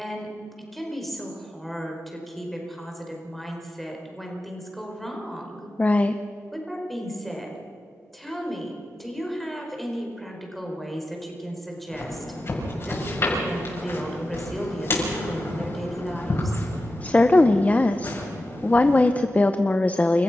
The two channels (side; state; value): both; normal; correlation 0.92